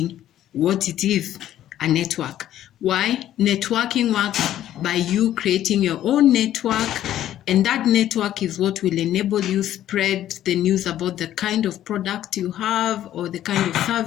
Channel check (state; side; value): quieter; right; 12.2 dB